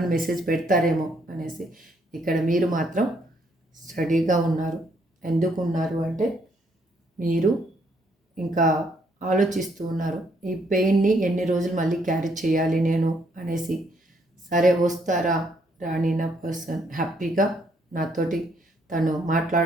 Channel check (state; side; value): normal; both; correlation 0.70